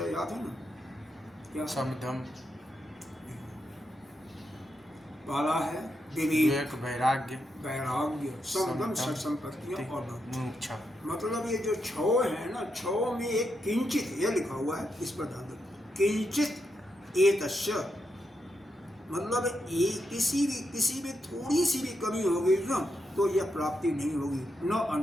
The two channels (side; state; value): both; normal; correlation 0.83